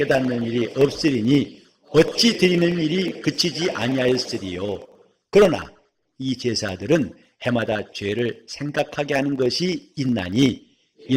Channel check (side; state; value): both; identical; correlation 1.00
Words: 일이 없으리니 어찌 드리는 일이 그치지 아니하였으리요. 그러나 이 제사들은 해마다 죄를 생각하게 하는 것이 있나니